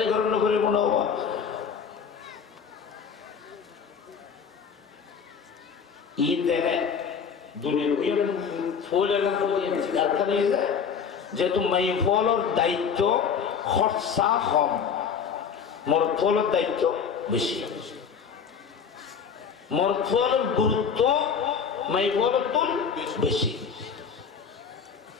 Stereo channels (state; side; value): quieter; right; 6.6 dB